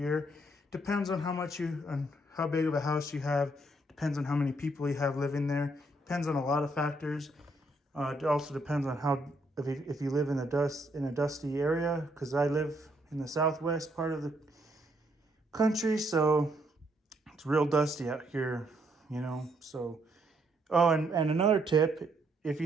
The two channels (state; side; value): normal; both; correlation 0.72